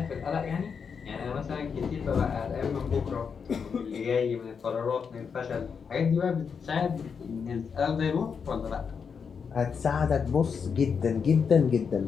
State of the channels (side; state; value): right; quieter; 6.2 dB